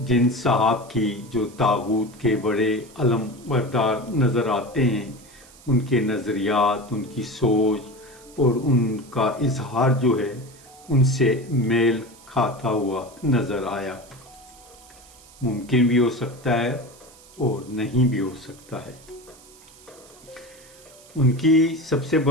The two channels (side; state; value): right; noise; hiss, 23 dB below the sound